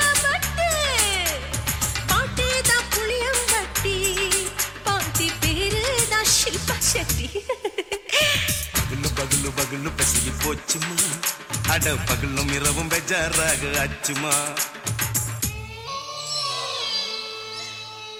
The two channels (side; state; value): both; identical; correlation 1.00